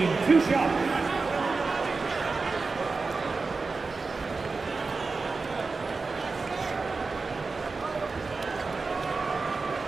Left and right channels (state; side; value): quieter; left; 4.1 dB